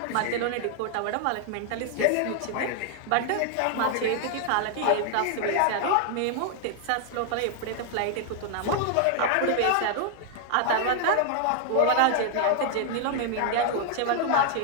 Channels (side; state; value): both; different; correlation 0.00